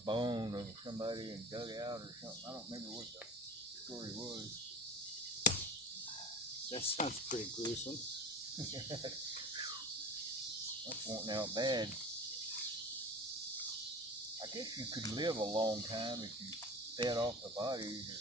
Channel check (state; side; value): normal; both; correlation 0.34